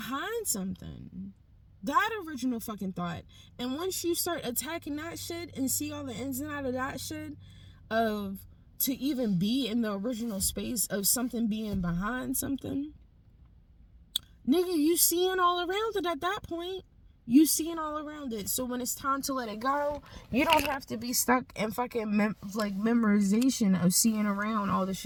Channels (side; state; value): both; identical; correlation 1.00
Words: something. That original fucking thought. And once you start attacking that shit and see all the ins and outs of that shit, of to even be in the original space of something being behind something, nigga, you seeing all around it at that point. You seeing all around it. So when it's time to let it go, you don't have to be stuck in fucking memorization of seeing around all the